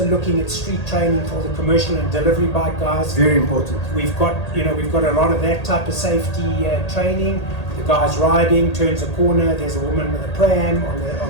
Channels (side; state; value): right; late; 1.8 ms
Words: looking at street training for the commercial and delivery bike guys. Very important. We've got a lot of that type of safety training. The guy's riding, turns a corner, there's a woman with a pram on